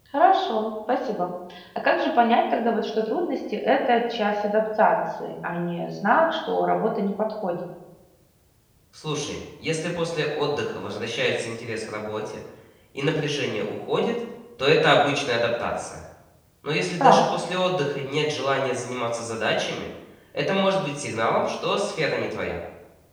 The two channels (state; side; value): identical; both; correlation 1.00